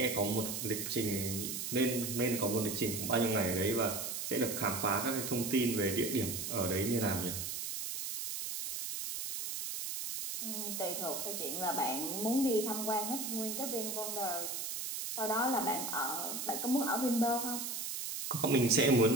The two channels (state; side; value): noise; right; hiss, 4 dB below the sound